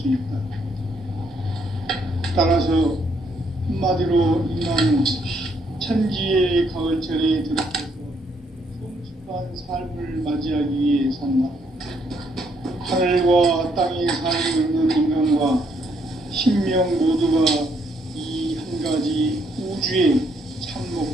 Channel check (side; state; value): both; normal; correlation 0.71